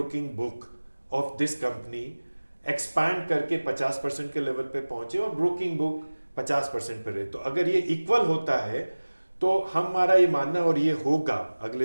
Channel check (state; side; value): inverted; both; correlation -1.00